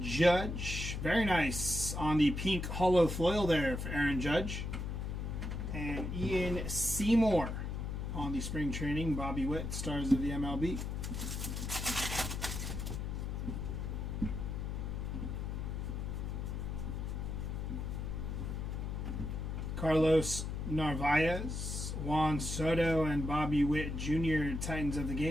Judge, very nice on the pink hollow foil there for Aaron Judge. And Ian Seymour on the spring training, Bobby Witt, stars of the MLB. Carlos Narvaez, Juan Soto, and Bobby Witt Jr., Titans of the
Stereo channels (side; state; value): left; noise; hum, 3 dB below the sound